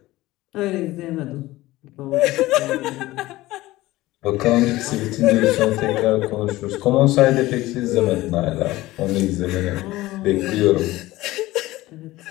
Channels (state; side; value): quieter; right; 17.8 dB